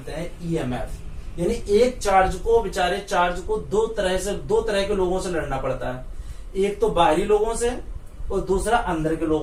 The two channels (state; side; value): identical; both; correlation 1.00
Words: हैं ईएमएफ। यानी एक चार्ज को, बेचारे चार्ज को दो तरह के लोगों से लड़ना पड़ता है, एक तो बाहरी लोगों से और दूसरा अंदर के